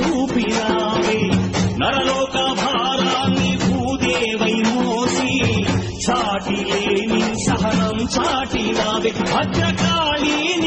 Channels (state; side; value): identical; both; correlation 1.00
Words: నరలోక భారాన్ని భూదేవై మోసి చాటి లేని సహనం చాటినావే. భద్రకాళి